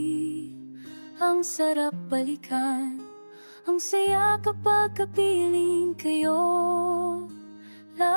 Ang sarap balikan, ang saya kapag kapiling kayo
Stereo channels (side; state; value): both; inverted; correlation -1.00